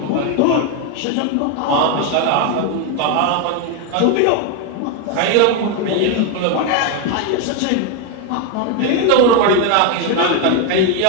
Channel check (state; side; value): different; both; correlation 0.01